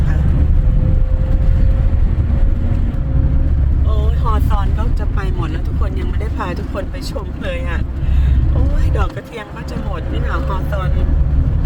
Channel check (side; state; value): both; identical; correlation 1.00